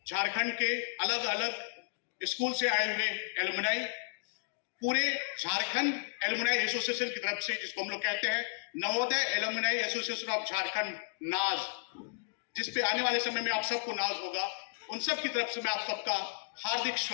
झारखंड के अलग अलग स्कूल से आए हुए एलुमनाई, पूरे झारखंड एलुमनाई एसोसिएशन की तरफ से, जिसको हम लोग कहते हैं Navodaya alumni association of Jharkhand नाज, जिस पे आने वाले समय में आप सबको नाज होगा, उन सब की तरफ से मैं आप सबका हार्दिक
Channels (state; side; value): silent; right; digital silence